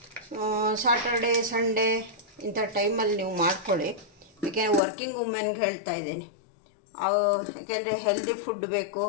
ಸಾಟರ್ಡೆ ಸಂಡೇ ಇಂಥ ಟೈಮಲ್ಲಿ ನೀವು ಮಾಡ್ಕೊಳ್ಳಿ. ಯಾಕೆಂದರೆ ವರ್ಕಿಂಗ್ ವುಮೆನ್ಗೆ ಹೇಳ್ತಾ ಇದ್ದೀನಿ. ಯಾಕೆಂದರೆ ಹೆಲ್ದಿ ಫುಡ್ ಬೇಕು.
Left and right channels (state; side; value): drops out; right; at 4.8 s